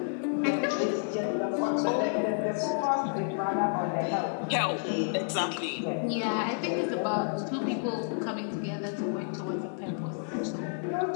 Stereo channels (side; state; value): right; silent; digital silence